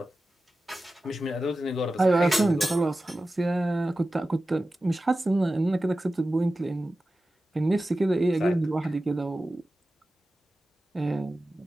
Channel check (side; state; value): both; normal; correlation 0.94